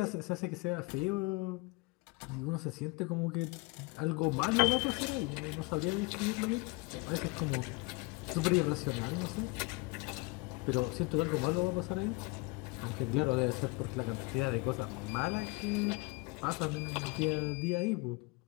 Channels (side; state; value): right; quieter; 25.7 dB